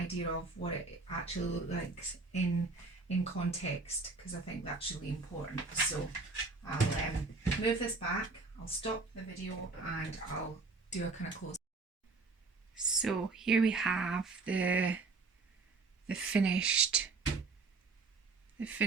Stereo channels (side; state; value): left; quieter; 3.9 dB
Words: of what it actually looks like in context, because I think that's really important. So I'll move this back, I'll stop the video and I'll do a kind of close. So here we have the finished